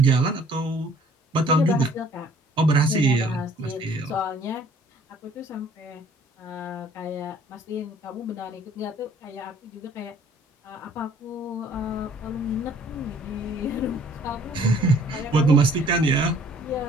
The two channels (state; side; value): normal; both; correlation 0.56